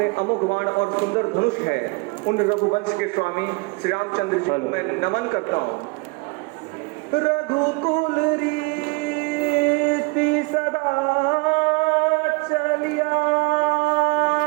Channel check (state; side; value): quieter; left; 27.9 dB